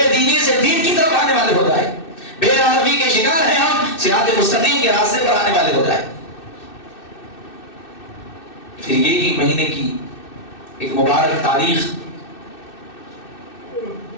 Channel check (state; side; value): late; right; 2.6 ms